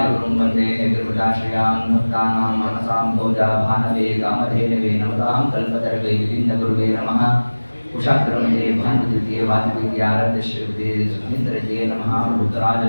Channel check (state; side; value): inverted; both; correlation -1.00